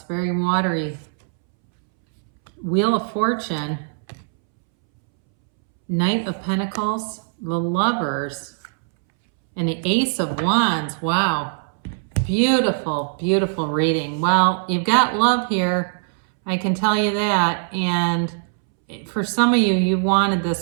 very watery. Wheel of Fortune, Knight of Pentacles, the Lovers, and the Ace of Wands. Wow. Beautiful, beautiful reading. Well, you've got love here. I can tell you that. And for some of you, you wanted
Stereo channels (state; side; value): silent; left; 65 dB below the other